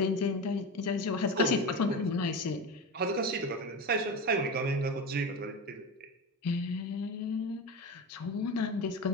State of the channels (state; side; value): normal; both; correlation 0.24